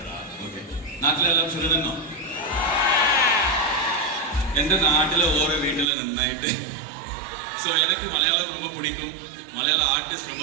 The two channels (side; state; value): left; drops out; at 5.9 s